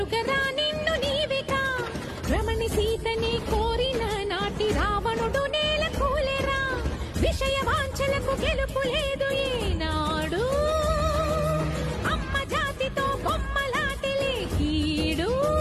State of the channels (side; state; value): both; identical; correlation 1.00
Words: నిన్ను నీవిగా. రమణి సీతని కోరిన నాటి రావణుడు నేల కూలెరా. విషయ వాంఛలకు గెలుపు లేదు ఈనాడు. అమ్మ జాతితో బొమ్మలాటిలే కీడు.